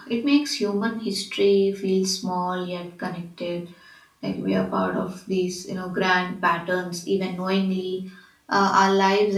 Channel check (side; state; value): both; identical; correlation 1.00